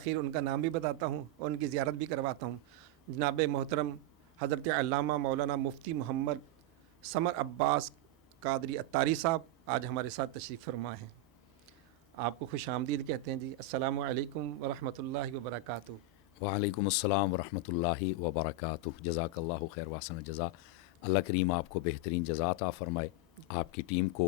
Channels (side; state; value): both; normal; correlation 0.01